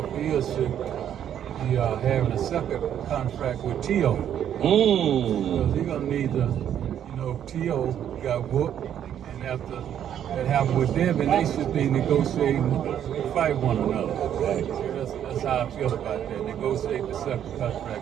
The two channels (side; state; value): left; quieter; 9.9 dB